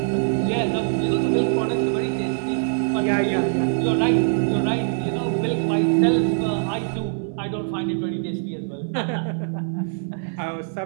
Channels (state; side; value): silent; left; 59 dB below the other